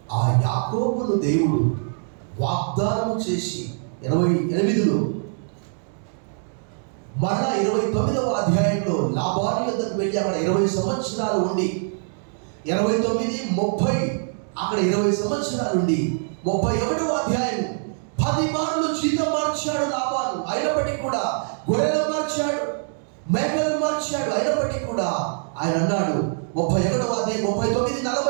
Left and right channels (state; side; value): silent; left; digital silence